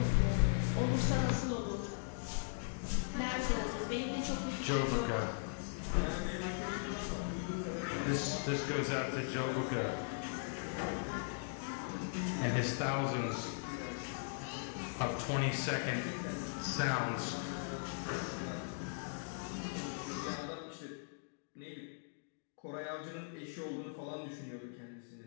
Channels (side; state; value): right; silent; digital silence